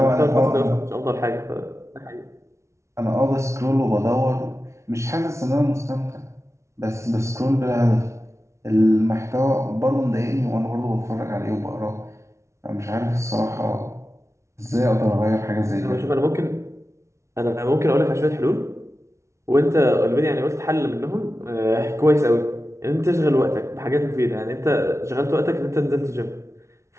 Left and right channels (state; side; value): late; left; 0.14 ms